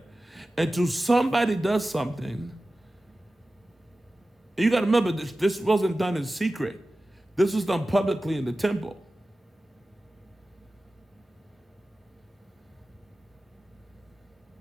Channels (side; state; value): both; normal; correlation 0.96